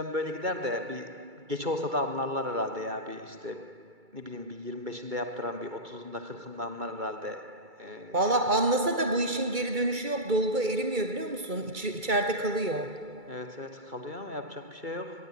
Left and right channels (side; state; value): left; late; 2.3 ms